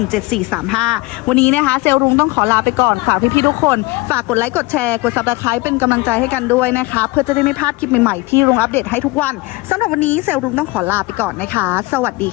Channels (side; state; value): right; quieter; 22.8 dB